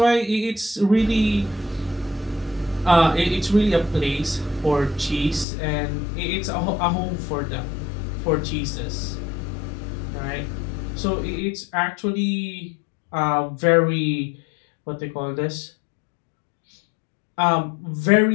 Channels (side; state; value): right; drops out; at 5.5 s